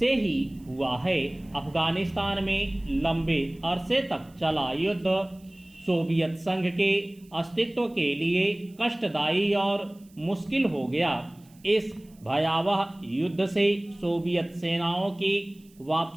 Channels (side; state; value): right; noise; hiss, 30 dB below the sound